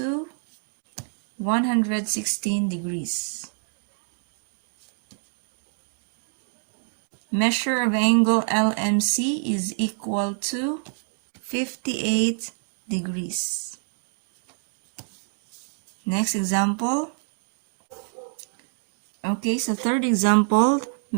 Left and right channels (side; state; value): left; silent; 57 dB below the other